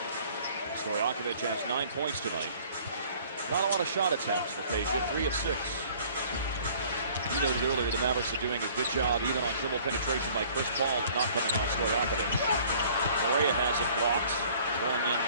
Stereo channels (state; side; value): inverted; both; correlation -0.53